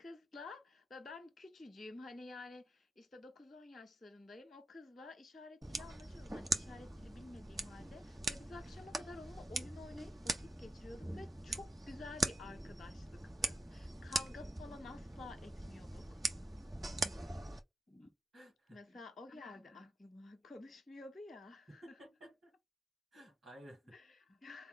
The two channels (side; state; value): both; normal; correlation 0.84